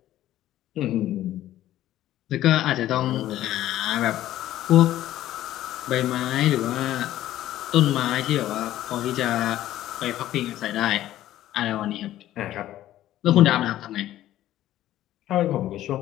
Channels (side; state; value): right; quieter; 13.6 dB